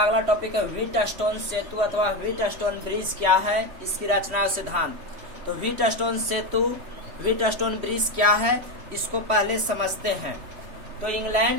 टॉपिक है व्हीटस्टोन सेतु अथवा व्हीटस्टोन ब्रिज क्या है, इसकी रचना और सिद्धांत। तो व्हीटस्टोन सेतु, व्हीटस्टोन ब्रिज क्या है, इसको पहले समझते हैं। तो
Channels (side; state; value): left; late; 3.1 ms